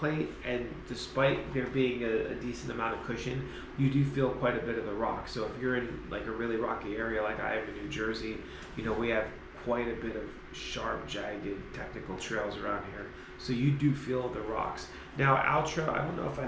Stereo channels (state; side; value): identical; both; correlation 1.00